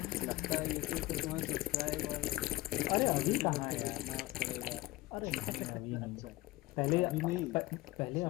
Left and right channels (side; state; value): right; quieter; 18.8 dB